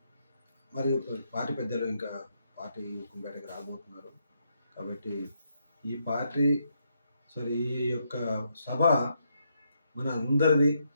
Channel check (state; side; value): inverted; both; correlation -0.78